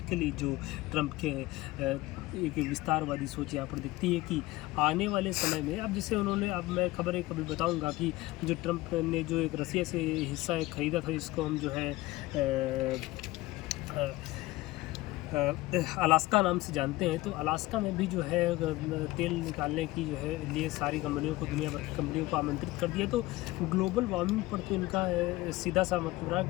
के लिए, जो ट्रंप के एक विस्तारवादी सोच यहाँ पर दिखती है कि आने वाले समय में, अब जैसे उन्होंने, अब मैं खबर एक अभी बताऊंगा कि जो ट्रंप ने जो एक रसिया से हिस्सा एक ख़रीदा था, इसको हम जो है अलास्का नाम से जानते हैं। तो अलास्का में भी जो है तेल निकालने की जो है लिए सारी कंपनियों को, दुनिया भर की कंपनियों को आमंत्रित कर दिया। तो ग्लोबल वार्मिंग पर तो इनका सीधा सा मतलब रहा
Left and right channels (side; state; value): right; quieter; 19.1 dB